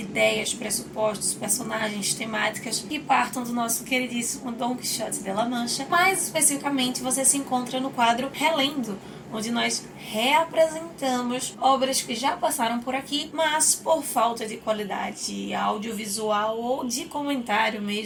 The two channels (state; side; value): identical; both; correlation 1.00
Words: ideias, pressupostos, personagens, temáticas que partam do nosso queridíssimo Dom Quixote de La Mancha. Mais especificamente, você se encontra no quadro Relendo, onde nós reapresentamos obras que já passaram por aqui, mas por falta de qualidade audiovisual ou de comentário